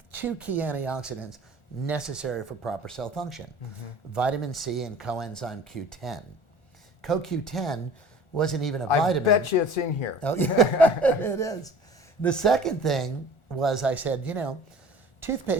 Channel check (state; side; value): late; right; 1.4 ms